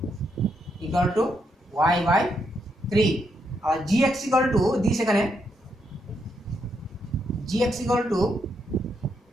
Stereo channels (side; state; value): both; normal; correlation 0.79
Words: equal to y/3 আর gx ইকুয়াল টু দিস, এখানে gx equal to